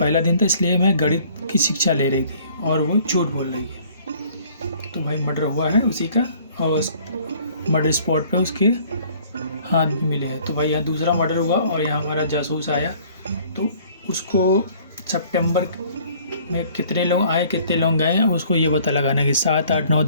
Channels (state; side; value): inverted; both; correlation -0.56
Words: दिन था इसलिए मैं गणित की शिक्षा ले रही थी, और वो झूठ बोल रही है। तो भाई मर्डर हुआ है उसी का, और उस मर्डर स्पॉट पे उसके हाथ भी मिले हैं। तो भाई यहाँ दूसरा मर्डर हुआ और यहाँ हमारा जासूस आया, तो उसको सितंबर में कितने लोग आए कितने लोग गए उसको ये पता लगाना है कि 7, 8, 9,